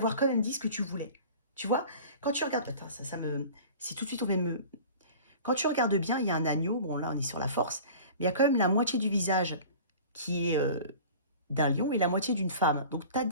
quand même dit ce que tu voulais. Tu vois, quand tu regardes, attends, ça me, c'est tout de suite, on va me, quand tu regardes bien, il y a un agneau, bon là on est sur la force, mais il y a quand même la moitié du visage qui est d'un lion et la moitié d'une femme. Donc tu as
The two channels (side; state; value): both; inverted; correlation -0.41